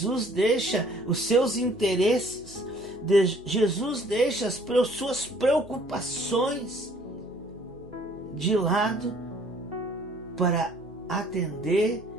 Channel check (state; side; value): normal; both; correlation 0.57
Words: deixa os seus interesses, Jesus deixa as suas preocupações de lado para atender